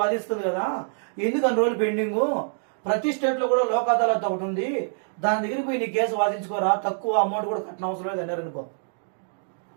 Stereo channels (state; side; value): silent; left; digital silence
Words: వాదిస్తుంది కదా, ఎందుకు అన్ని రోజులు పెండింగ్, ప్రతి స్టేట్ లో కూడా లోక్ అదాలత్ ఒకటి ఉంది, దాని దగ్గరికి పోయి నీ కేసు వాదించుకోరా, తక్కువ అమౌంట్ కూడా కట్టిన అవసరం లేదు అన్నారు అనుకో.